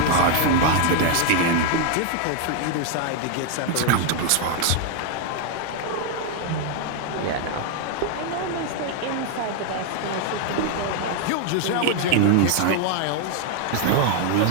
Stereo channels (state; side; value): different; both; correlation 0.00